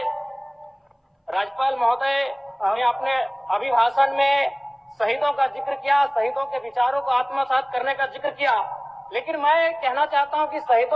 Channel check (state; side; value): identical; both; correlation 1.00